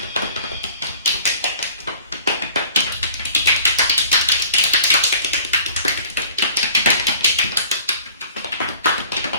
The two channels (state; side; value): inverted; both; correlation -0.49